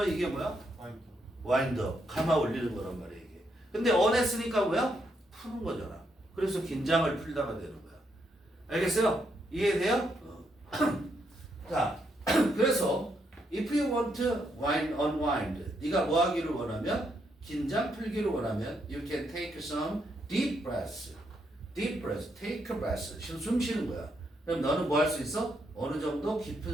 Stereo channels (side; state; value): both; normal; correlation 0.77